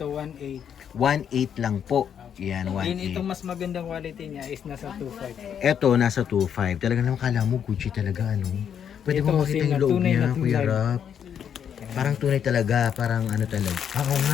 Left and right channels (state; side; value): quieter; right; 8.4 dB